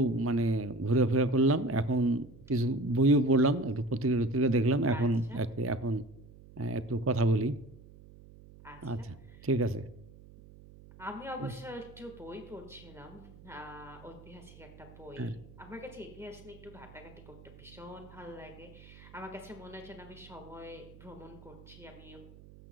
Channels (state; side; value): noise; right; hum, 20 dB below the sound